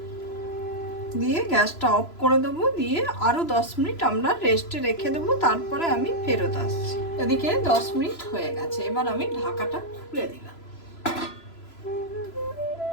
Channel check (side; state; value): right; late; 3.0 ms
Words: দিয়ে গ্যাসটা অফ করে দেবো। দিয়ে আরো 10 মিনিট আমরা রেস্টে রেখে দেবো, তারপরে আমি ফেরত আসছি। এদিকে 10 মিনিট হয়ে গেছে। এবার আমি ঢাকাটা খুলে দিলাম।